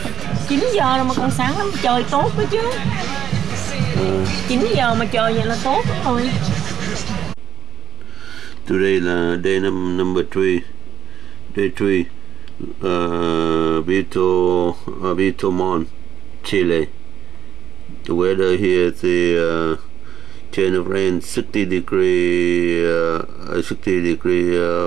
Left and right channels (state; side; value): quieter; left; 9.4 dB